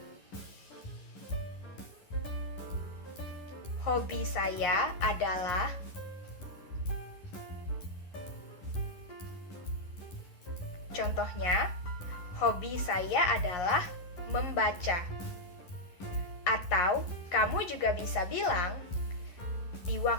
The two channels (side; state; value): right; late; 11 ms